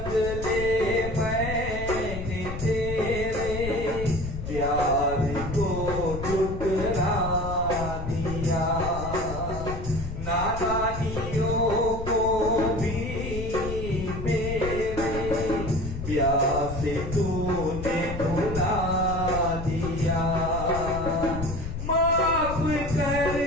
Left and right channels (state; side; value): noise; left; rumble, 7 dB below the sound